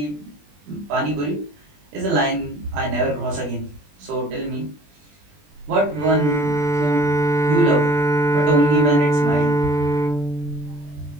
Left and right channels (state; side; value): late; left; 20 ms